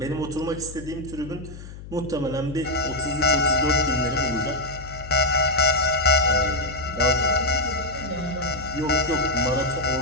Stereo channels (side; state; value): left; noise; hum, 14 dB below the sound